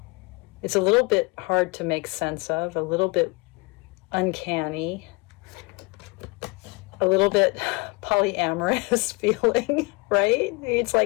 It's a little bit hard to make sense of, a little bit uncanny, a little bit polyamorous feeling, right? It's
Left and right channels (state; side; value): quieter; right; 27.4 dB